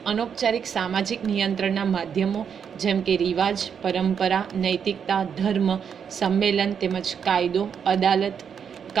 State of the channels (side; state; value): left; quieter; 7.4 dB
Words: અનૌપચારિક સામાજિક નિયંત્રણના માધ્યમો જેમ કે રિવાજ, પરંપરા, નૈતિકતા, ધર્મ, સંમેલન તેમજ કાયદો, અદાલત,